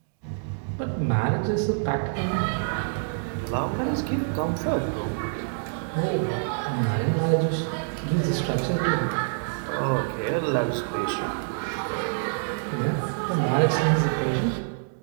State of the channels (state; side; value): silent; left; digital silence